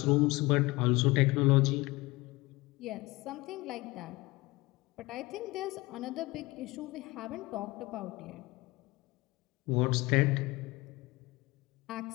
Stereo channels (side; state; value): right; quieter; 21.7 dB